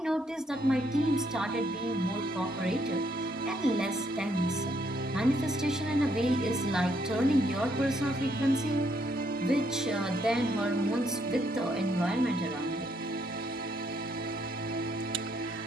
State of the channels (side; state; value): both; normal; correlation 0.72